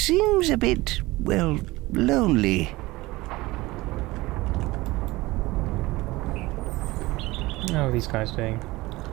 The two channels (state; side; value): quieter; left; 20.2 dB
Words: a bit, well, lonely. How are these guys doing?